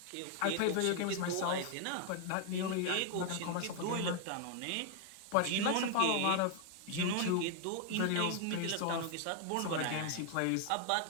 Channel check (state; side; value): different; both; correlation 0.00